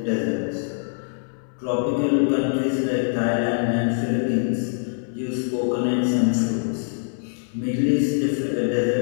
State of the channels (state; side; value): silent; right; 61 dB below the other